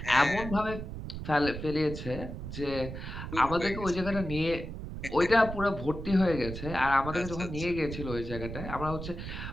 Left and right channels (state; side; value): noise; right; rumble, 8 dB below the sound